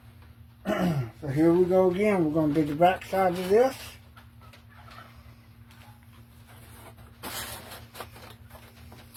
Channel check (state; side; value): identical; both; correlation 1.00